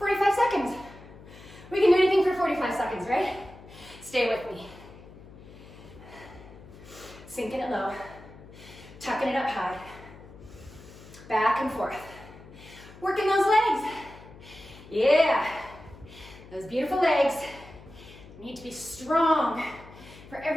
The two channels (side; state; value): left; noise; hum, 19 dB below the sound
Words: seconds. We can do anything for 45 seconds, right? Stay with me. Sinking it low. Tucking it up high. Back and forth. Working those legs. Yeah. Those beautiful legs need to be strong for